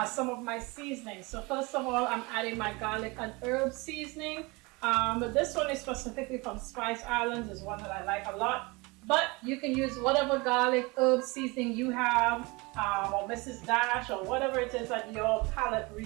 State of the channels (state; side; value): quieter; left; 25.6 dB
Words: some of my seasonings. So first of all, I'm adding my garlic and herb seasoning. But this one is specifically from Spice Islands. Is one that I like a lot. But you can use whatever garlic herb seasoning you have, or Mrs. Dash, or whatever it is that your palate